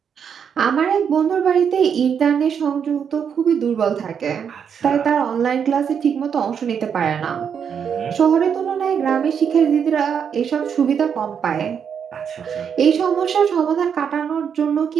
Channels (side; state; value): left; quieter; 7.4 dB